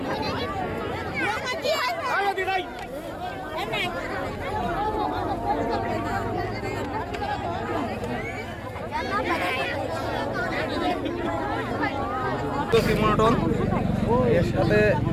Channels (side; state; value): both; identical; correlation 1.00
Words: মনোটন এর সাথে